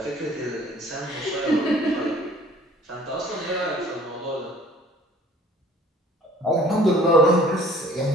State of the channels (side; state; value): both; normal; correlation 0.53